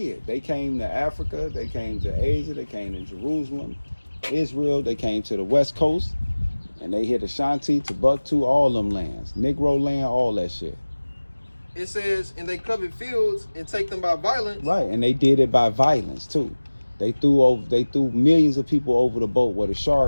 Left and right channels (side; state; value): both; inverted; correlation -1.00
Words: They came to Africa, they came to Asia, they came to Jerusalem, Israel, they came to the West Coast, and they hit Ashanti, Timbuktu, all them lands. Negro land, all that shit. It says, and they covet fields and take them by violence. Right, and they did it by violence too. They threw millions of people over the boat where the